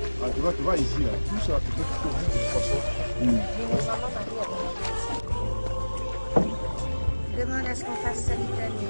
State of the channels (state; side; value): inverted; both; correlation -1.00